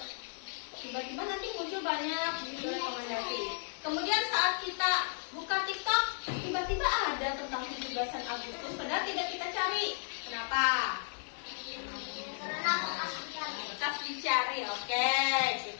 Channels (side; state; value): right; silent; digital silence